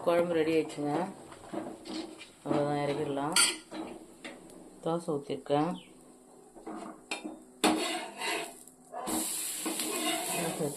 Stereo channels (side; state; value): both; identical; correlation 1.00